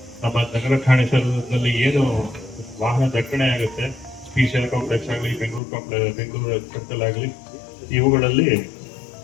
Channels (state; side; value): drops out; right; at 5.6 s